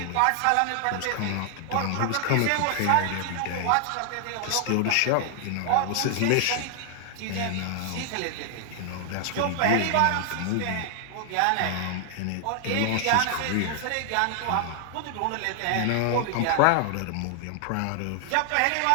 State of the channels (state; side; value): different; both; correlation 0.00